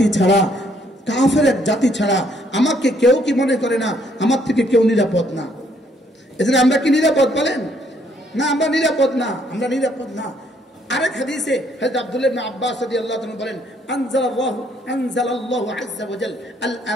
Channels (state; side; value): normal; both; correlation 0.67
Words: ছাড়া, কাফের এক জাতি ছাড়া আমাকে কেউ কি মনে করে না আমার থেকে কেউ নিরাপদ না। এজন্য আমরা কি নিরাপদ বলেন? না, আমরা নিরাপদ না, আমরা নিরাপদ না। আরেক হাদিসে হযরত আব্দুল্লাহ ইবনে আব্বাস রাদিয়াল্লাহু তাআলা বলেন, আনজালাল্লাহু আযজা ওয়া জাল আল